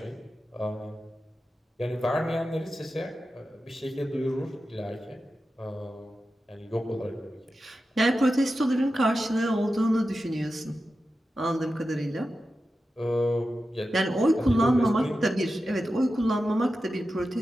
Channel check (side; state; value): both; normal; correlation 0.92